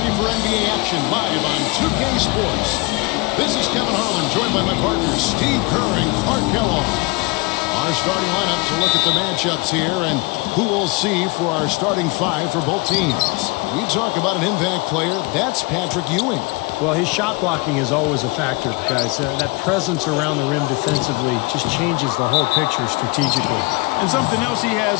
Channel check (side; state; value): right; quieter; 26.5 dB